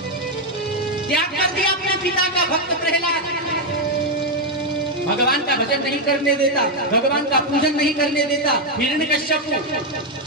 त्याग कर दिया अपने पिता का। भक्त प्रहलाद भगवान का भजन नहीं करने देता, भगवान का पूजन नहीं करने देता। हिरण्यकश्यप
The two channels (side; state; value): both; normal; correlation 0.03